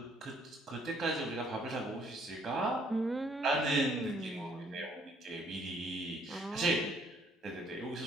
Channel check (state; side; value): normal; both; correlation 0.64